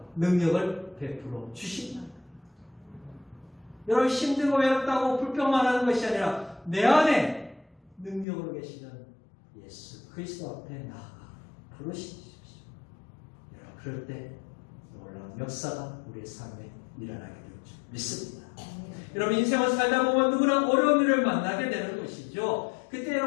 능력을 베풀어 주신다. 여러분 힘들고 외롭다고 불평만 하는 것이 아니라 내 안에 능력으로 계시는 예수 그리스도 앞에 나아가 부르시십시오. 그럴 때 놀라운 역사가 우리의 삶에 일어나게 될 줄 믿습니다. 여러분 인생을 살다 보면 누구나 어려운 일을 만나게 되는 것이죠. 그때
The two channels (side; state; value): right; drops out; at 8.2 s